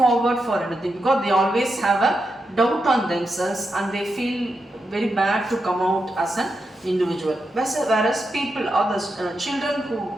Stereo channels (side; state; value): both; normal; correlation 0.86